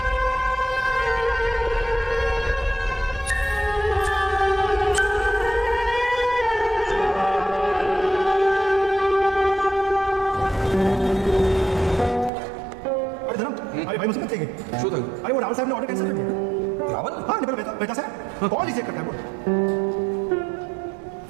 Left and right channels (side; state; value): left; drops out; at 12.3 s